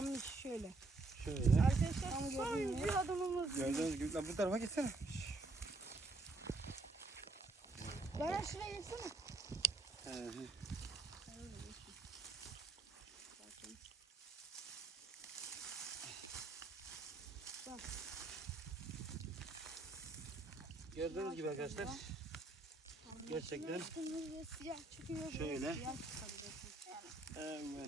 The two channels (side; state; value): left; quieter; 3.2 dB